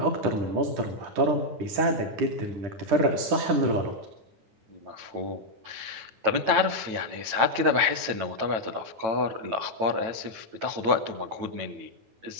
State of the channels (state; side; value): late; left; 9.1 ms